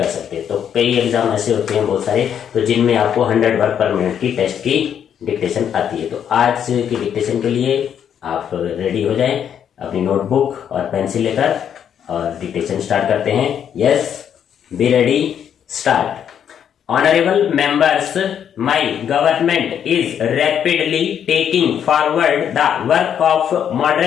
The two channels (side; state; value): right; quieter; 8.8 dB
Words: सकते हैं। तो कई एग्जाम ऐसे होते हैं बहुत सारे तो जिनमें आपको 100 वर्ड पर मिनट की टेस्ट की डिक्टेशन आती है। तो आज की डिक्टेशन के लिए आप रेडी हो जाएं अपनी नोटबुक और पेंसिल लेकर और डिक्टेशन स्टार्ट करते हैं। Yes, be ready, start. Honorable members, my government is rapidly taking forward the work of